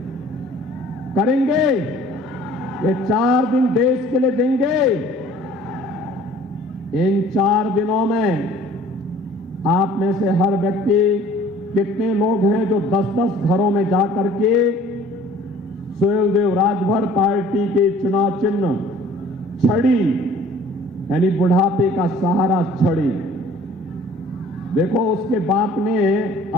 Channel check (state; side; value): normal; both; correlation 0.52